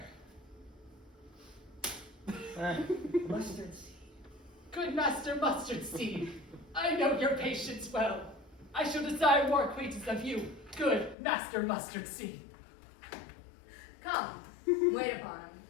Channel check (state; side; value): drops out; right; at 11.2 s